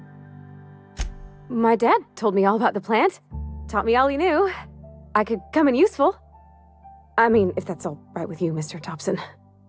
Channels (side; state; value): both; identical; correlation 1.00